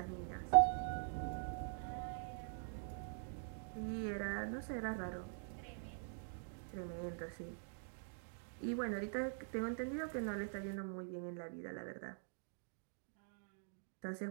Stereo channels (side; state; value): left; silent; digital silence